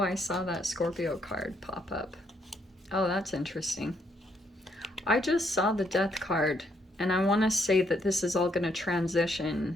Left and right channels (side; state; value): both; normal; correlation 0.73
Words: I saw that Scorpio card pop up. Oh, that's interesting. I just saw the Death card, and I want to say that this is all going to